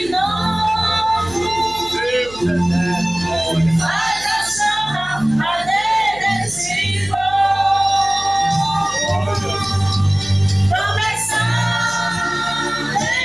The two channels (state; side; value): noise; right; hum, 19 dB below the sound